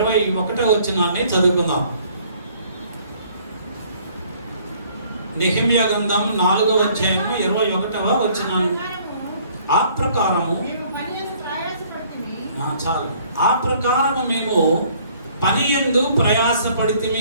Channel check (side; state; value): both; inverted; correlation -0.59